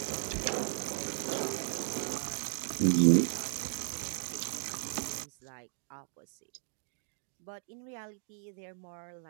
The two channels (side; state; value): left; silent; digital silence